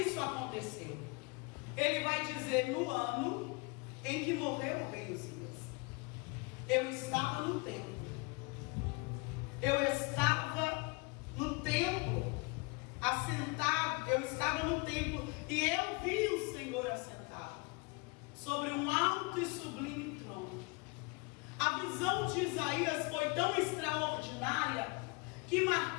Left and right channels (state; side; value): quieter; right; 28.7 dB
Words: aconteceu. Ele vai dizer: no ano em que morreu o rei Uzias, eu estava no templo. Eu estava no templo, assentado. Eu estava no templo e eu vi o Senhor assentado sobre um alto e sublime trono. A visão de Isaías foi tão extraordinária que